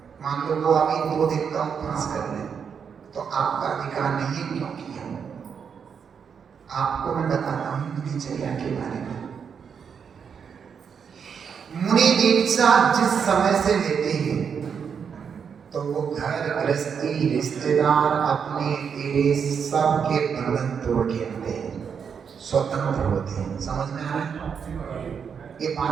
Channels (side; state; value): left; quieter; 6.8 dB